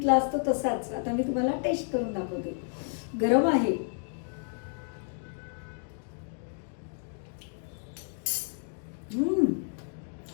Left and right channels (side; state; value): right; silent; 57 dB below the other